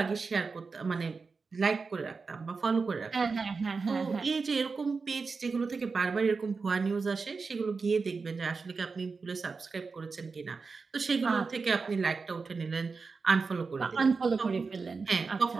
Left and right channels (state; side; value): quieter; left; 4.6 dB